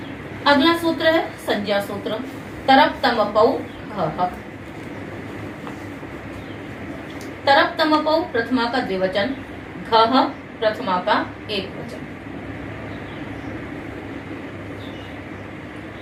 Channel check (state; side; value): identical; both; correlation 1.00